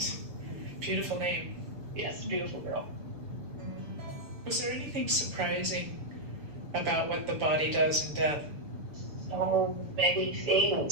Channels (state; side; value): late; left; 6.8 ms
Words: Beautiful name. Yes, beautiful girl. Was there anything surprising about what the body does in death? So many